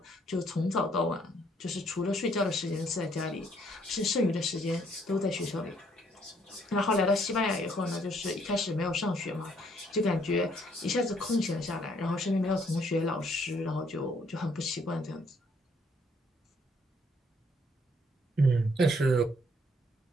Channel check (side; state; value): both; normal; correlation 0.67